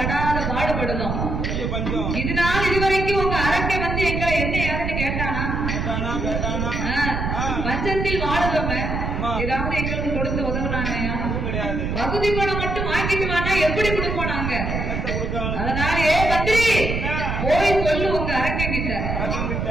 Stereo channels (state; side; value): noise; right; rumble, 2 dB below the sound